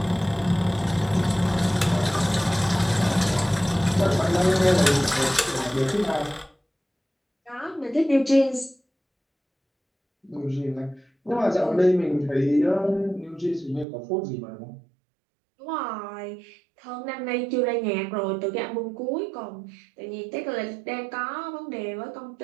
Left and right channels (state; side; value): drops out; left; at 13.9 s